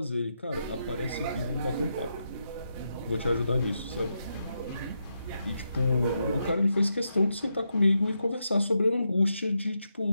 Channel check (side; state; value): both; inverted; correlation -0.84